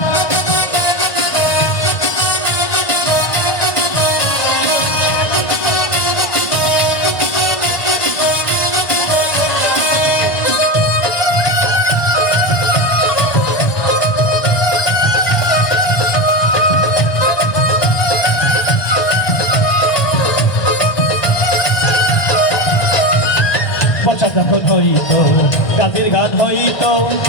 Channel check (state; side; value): late; right; 1.6 ms